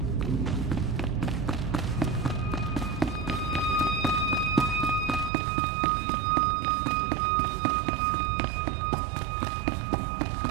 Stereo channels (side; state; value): left; drops out; at 5.3 s